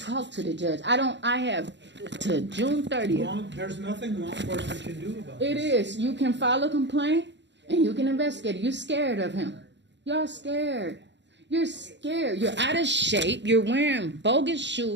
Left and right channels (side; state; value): left; late; 0.52 ms